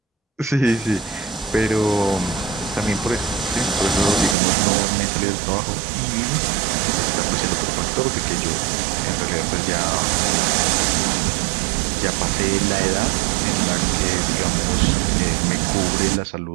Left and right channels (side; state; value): left; drops out; at 4.4 s